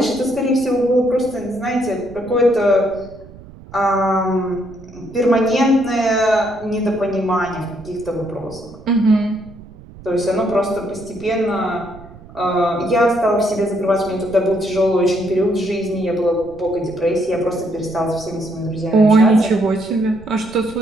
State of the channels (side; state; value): right; noise; rumble, 19 dB below the sound